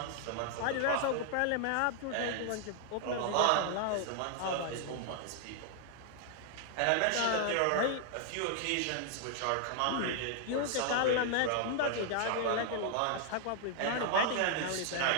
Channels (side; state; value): both; different; correlation 0.00